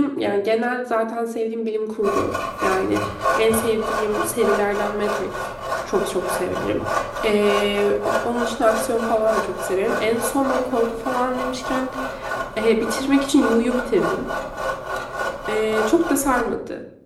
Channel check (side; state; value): both; identical; correlation 1.00